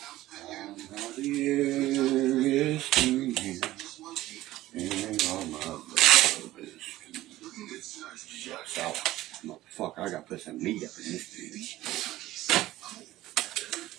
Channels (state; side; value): quieter; left; 16.0 dB